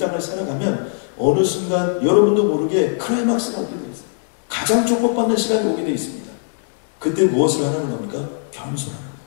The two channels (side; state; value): right; silent; digital silence